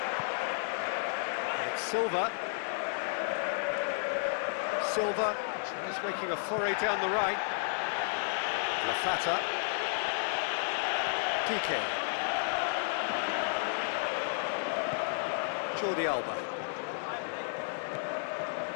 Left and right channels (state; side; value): silent; right; 56 dB below the other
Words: It's Silva. Silva tries making a foray down the right. Lafata. Piqué. Jordi Alba.